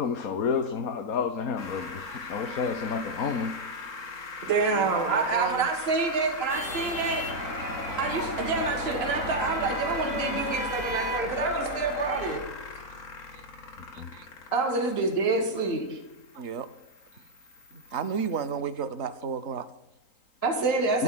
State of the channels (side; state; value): right; late; 3.9 ms